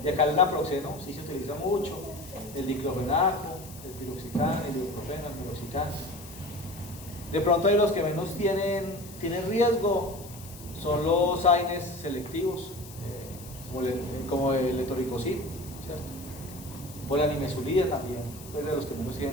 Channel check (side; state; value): left; noise; hiss, 17 dB below the sound